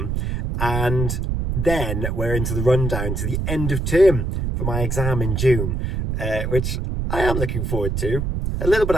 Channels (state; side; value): noise; right; rumble, 2 dB below the sound